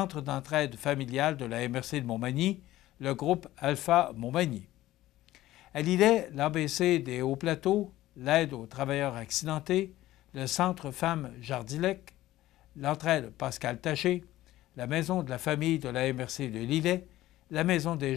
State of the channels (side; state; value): right; quieter; 15.5 dB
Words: d'entraide familiale de la MRC de Montmagny, le groupe Alpha Montmagny. À Lillet, l'ABC des Hauts-Plateaux, l'aide aux travailleurs accidentés, le Centre Femmes Jardilec, l'entraide Pascal Taché, la Maison de la famille de la MRC de Lillet, la Maison des